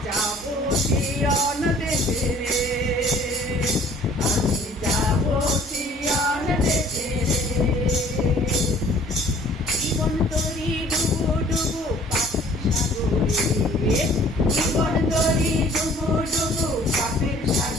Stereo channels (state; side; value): normal; both; correlation 0.54